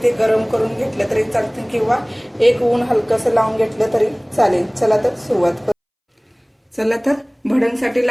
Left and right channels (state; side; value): identical; both; correlation 1.00